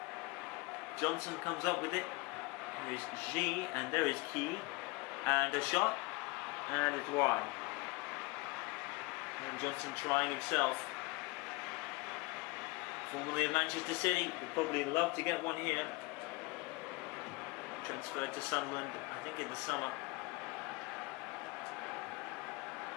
Johnson comes up with it. There is G, and there is Key. And a shot, and it's wide. And Johnson trying himself. Formerly of Manchester City, would probably love to get one here. Transferred to Sunderland, I think in the summer.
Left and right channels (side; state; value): right; quieter; 25.1 dB